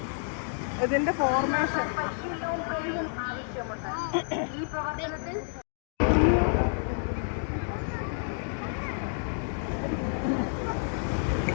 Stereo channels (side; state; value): right; silent; 58 dB below the other